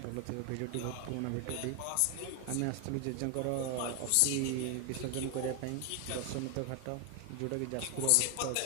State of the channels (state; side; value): different; both; correlation 0.01